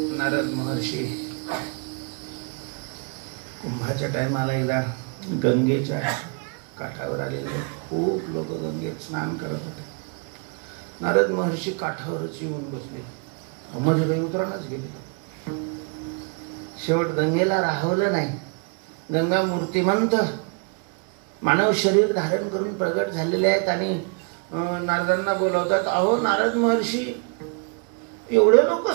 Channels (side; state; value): left; quieter; 36.4 dB